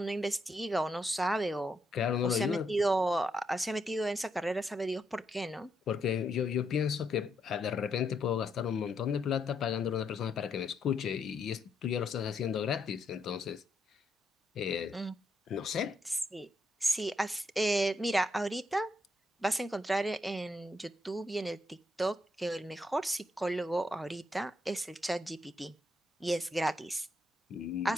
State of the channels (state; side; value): normal; both; correlation 0.78